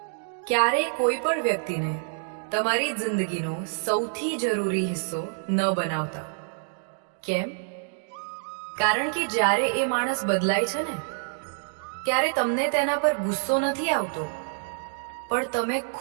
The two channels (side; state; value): left; silent; digital silence